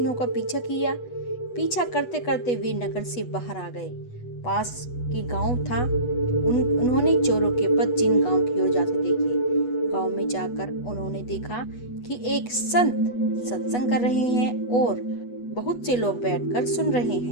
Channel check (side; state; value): right; late; 8.2 ms